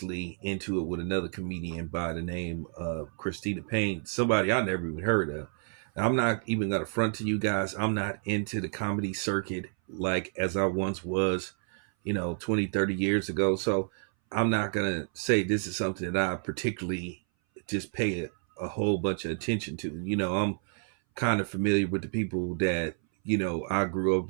into it with another comedian by the name of Christina Payne, somebody I never even heard of. I'm not even going to front to you guys. I'm not into the comedy circuit like as I once was, 20, 30 years ago. So I'm not going to say this is something that I particularly just pay a whole bunch of attention to. I'm kind of familiar with the people that, I grew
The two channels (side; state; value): left; silent; 58 dB below the other